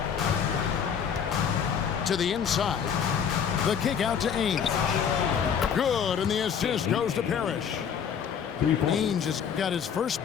To the inside. The kick out to Ainge. Good, and the assist goes to Parrish. Ainge has got his first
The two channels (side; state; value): right; quieter; 7.6 dB